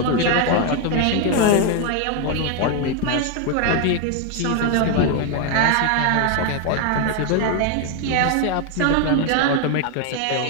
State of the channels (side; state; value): both; different; correlation 0.01